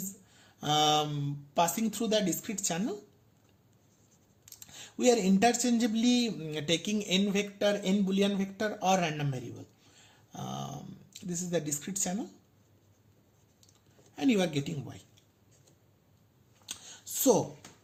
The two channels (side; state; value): both; identical; correlation 1.00